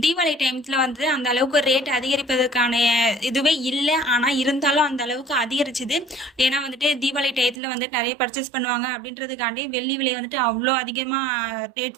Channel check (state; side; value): drops out; left; at 7.6 s